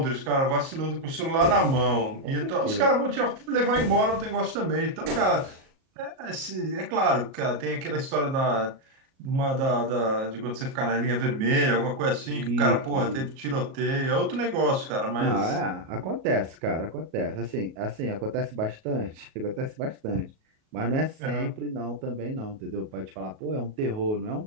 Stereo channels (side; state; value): left; late; 37 ms